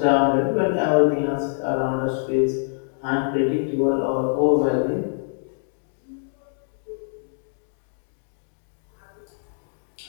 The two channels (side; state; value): right; silent; digital silence